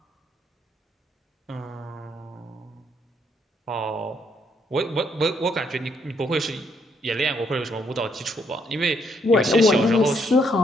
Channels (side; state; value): both; normal; correlation 0.72